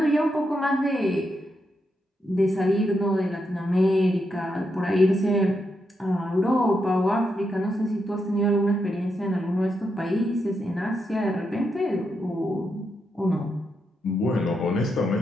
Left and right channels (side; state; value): both; normal; correlation 0.83